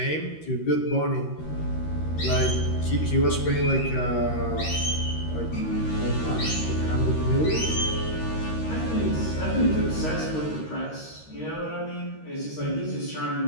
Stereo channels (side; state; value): right; late; 13 ms